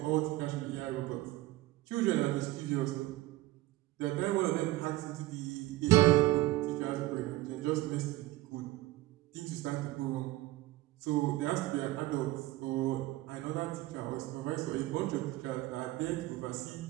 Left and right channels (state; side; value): quieter; left; 17.9 dB